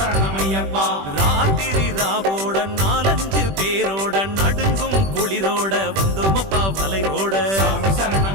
ராத்திரி ராவோட 4-5 பேரோட நடுங்கும் குளிரோட வந்தோமப்பா வலைரோட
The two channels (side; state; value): left; late; 21 ms